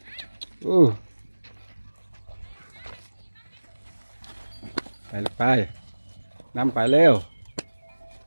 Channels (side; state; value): both; inverted; correlation -1.00